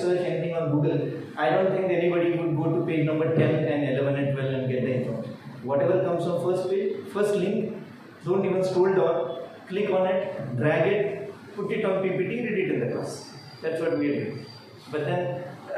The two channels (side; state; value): both; identical; correlation 1.00